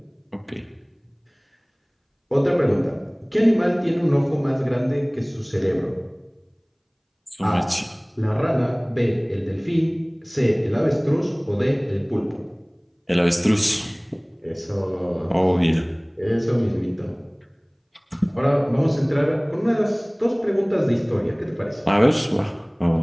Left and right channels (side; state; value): both; identical; correlation 1.00